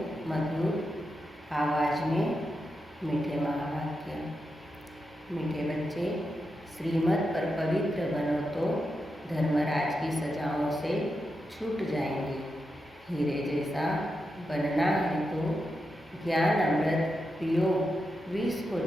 मधुर आवाज़ में मीठे महावाक्य। मीठे बच्चे, श्रीमत पर पवित्र बनो तो धर्मराज की सजाओं से छूट जाएंगे। हीरे जैसा बनना है तो ज्ञान अमृत पियो, विष को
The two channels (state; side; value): normal; both; correlation 0.87